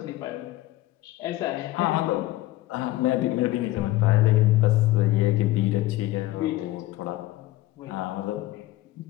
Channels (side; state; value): right; quieter; 16.9 dB